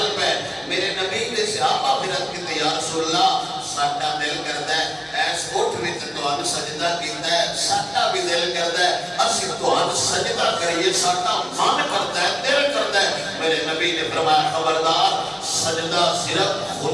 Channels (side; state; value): both; identical; correlation 1.00